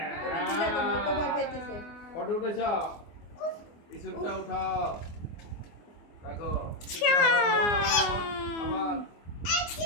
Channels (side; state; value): right; late; 24 ms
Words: ওটা দিলে তো মতো ভয় পাইতেছে। ফটো উঠেছ, ইসুকটা উঠাও, রাখো। আবার